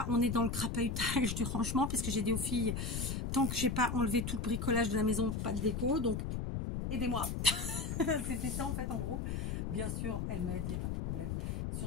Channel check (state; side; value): noise; left; rumble, 2 dB below the sound